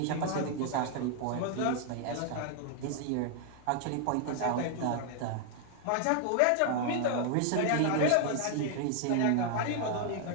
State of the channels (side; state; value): both; different; correlation 0.00